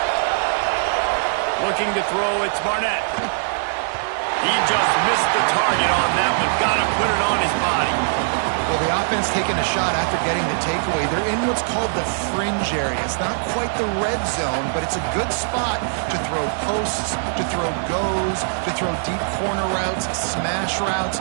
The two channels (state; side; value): silent; left; digital silence